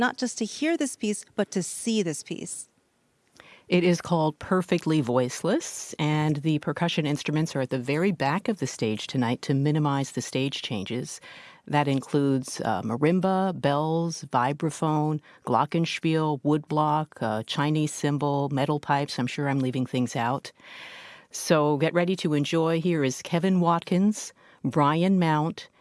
just to hear this piece, but to see this piece. It is called Perfectly Voiceless, and the percussion instruments are at the very back of the stage tonight to minimize the stage changes. That includes marimba, bells, vibraphone, glockenspiel, woodblock, Chinese cymbal, metal pipes. I'm sure I'm leaving things out. So get ready to enjoy. Here is Kevin Watkins, Brian Mount,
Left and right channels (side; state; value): both; identical; correlation 1.00